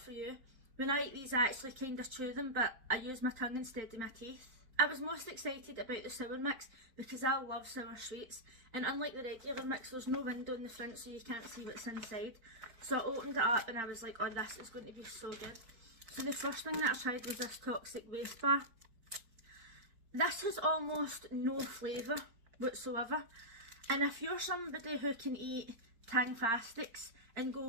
for you. When I eat these, I actually kind of chew them, but I use my tongue instead of my teeth. I was most excited about the sour mix because I love sour sweets, and unlike the regular mix, there's no window in the front so you can't see what's inside. So I opened it up and I was like, oh, this is going to be so good. So the first thing that I tried was this toxic waste bar. This has almost no flavour whatsoever, and if you're somebody who can eat Tang-fastics and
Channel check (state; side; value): late; left; 4.4 ms